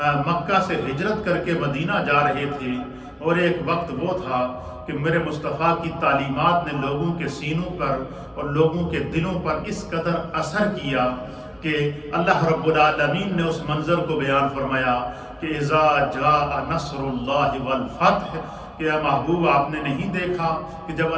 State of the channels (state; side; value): identical; both; correlation 1.00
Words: مکہ سے ہجرت کر کے مدینہ جا رہے تھے، اور ایک وقت وہ تھا کہ میرے مصطفیٰ کی تعلیمات نے لوگوں کے سینوں پر اور لوگوں کے دلوں پر اس قدر اثر کیا کہ اللہ رب العالمین نے اس منظر کو بیان فرمایا کہ اذا جاء نصر اللہ والفتح، کہ اے محبوب آپ نے نہیں دیکھا کہ جب